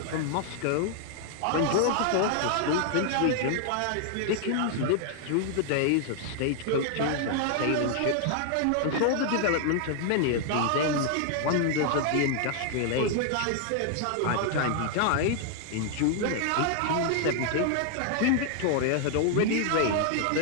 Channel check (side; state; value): both; different; correlation 0.00